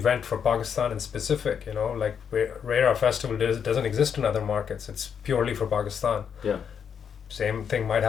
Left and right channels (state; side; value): quieter; right; 7.4 dB